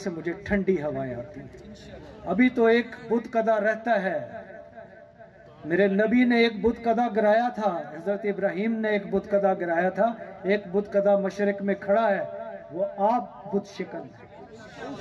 मुझे ठंडी हवाएं आती हैं। अभी तो एक बुत कदा रहता है, मेरे नबी ने एक बुत कदा गिराया था, हजरत इब्राहिम ने एक बुत कदा गिराया था, एक बुत कदा मशरिक में खड़ा है, वो आप बुत शिकन है।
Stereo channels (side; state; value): both; identical; correlation 1.00